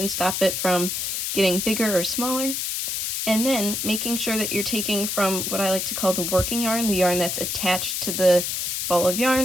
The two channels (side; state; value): left; noise; hiss, 2 dB below the sound